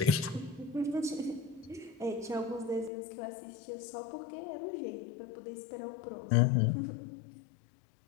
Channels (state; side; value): drops out; right; at 2.9 s